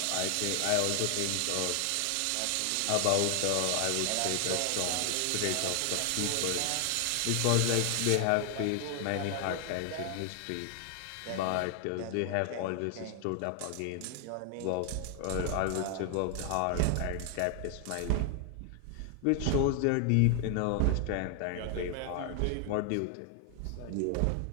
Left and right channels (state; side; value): different; both; correlation 0.00